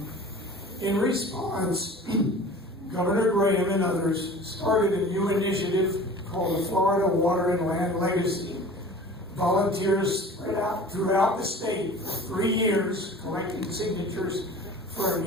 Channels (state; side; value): normal; both; correlation 0.41